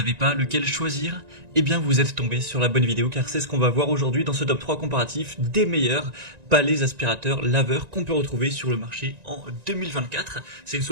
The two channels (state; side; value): late; left; 1.9 ms